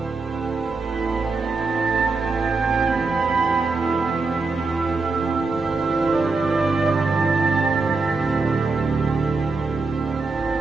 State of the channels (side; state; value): left; quieter; 3.9 dB